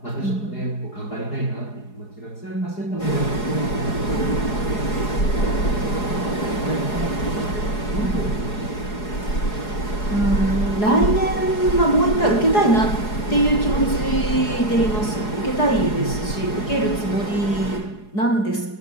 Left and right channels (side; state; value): right; late; 4.8 ms